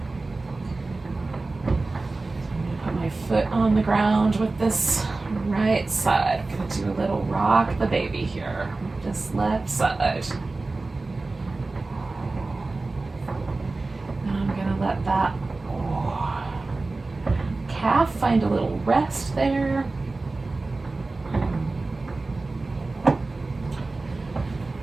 I'm going to put my foot on the ground with this right side. I'm going to do a little rock the baby here with this left side. And I'm going to let that calf find a little rest there. Slide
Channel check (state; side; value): quieter; left; 3.4 dB